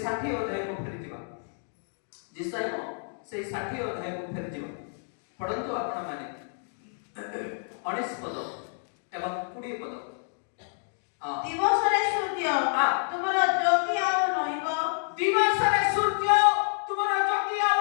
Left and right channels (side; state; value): right; silent; 59 dB below the other